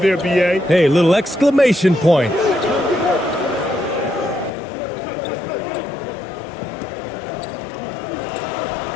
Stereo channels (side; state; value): right; drops out; at 4.5 s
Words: there, B.A. Hey, little exclamation point.